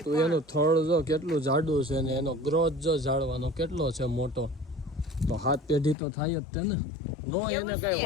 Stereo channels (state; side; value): drops out; right; at 6.0 s